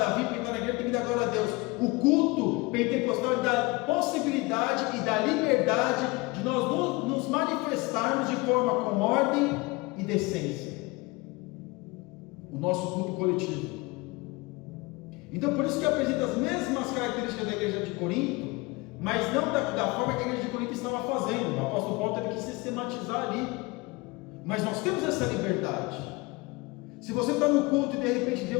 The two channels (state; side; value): quieter; right; 24.3 dB